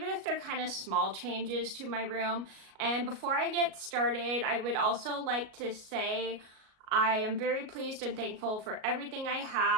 if they're kind of small changes to my room. And before I get started, I would also like to say I am very pleased and thankful for everything I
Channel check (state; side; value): late; left; 38 ms